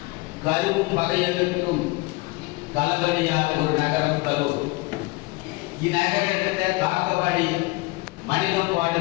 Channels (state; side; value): quieter; right; 24.1 dB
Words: கருவும் பகையருக்கும் கலவரையார் ஒரு நகரம் கரூர். இந்நகரத்தை காக்கவாடி மனிதம்